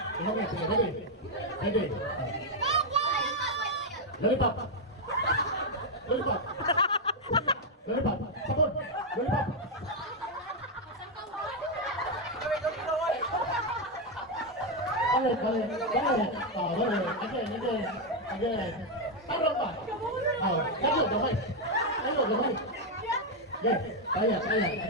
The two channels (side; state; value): both; normal; correlation 0.02